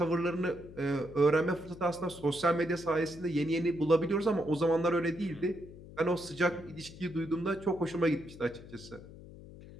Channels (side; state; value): left; noise; hum, 16 dB below the sound